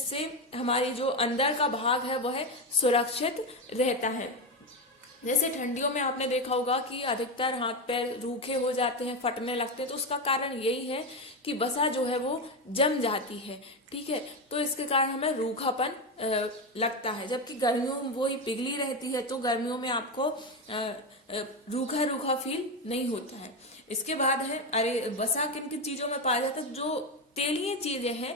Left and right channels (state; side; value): normal; both; correlation 0.13